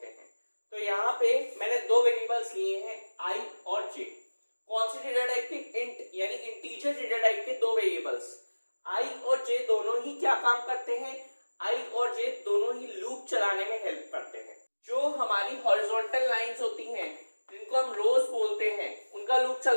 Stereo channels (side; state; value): both; inverted; correlation -1.00